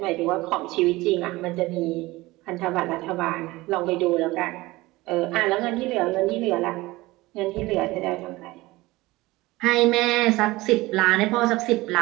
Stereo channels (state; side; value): quieter; left; 19.9 dB